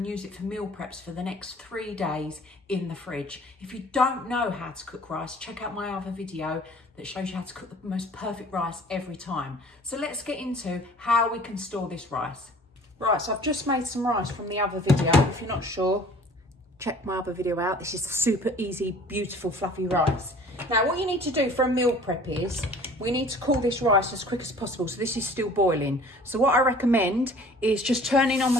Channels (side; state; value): both; normal; correlation 0.49